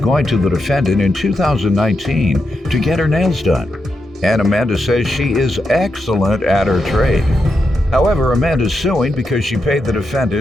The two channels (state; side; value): normal; both; correlation 0.85